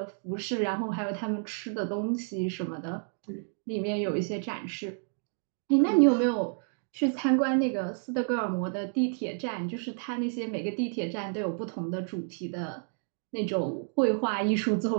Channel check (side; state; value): left; silent; 58 dB below the other